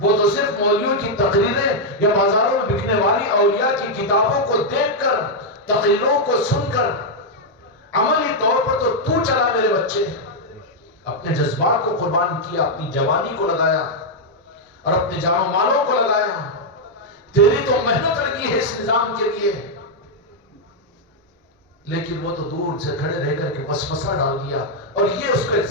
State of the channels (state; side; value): normal; both; correlation -0.02